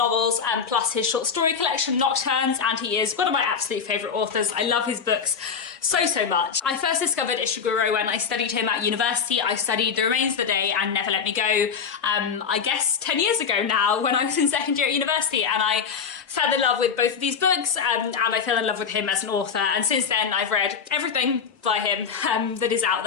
plus his short story collection Nocturnes, and he is one of my absolute favourite authors. I love his books so much. I first discovered Ishiguro when I studied him at university. I studied The Remains of the Day and Never Let Me Go, I guess 10 years ago now, when I was in second year at university, and I fell in love with both of these books, and I fell in love with him as an author, and since then I've read everything by him that is out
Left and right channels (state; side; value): quieter; right; 6.4 dB